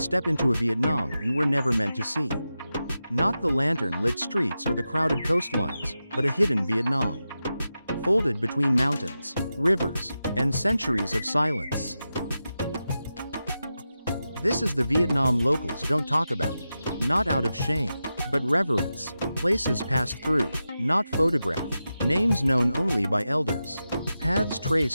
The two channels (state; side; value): inverted; both; correlation -0.91